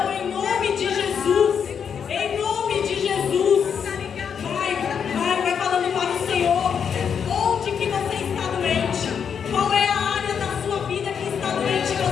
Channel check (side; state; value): right; quieter; 7.3 dB